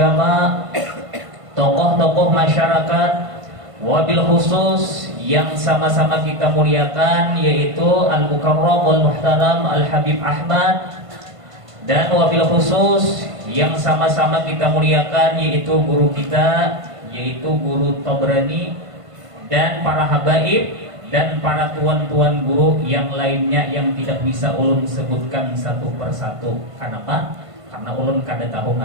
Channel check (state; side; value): late; left; 1.5 ms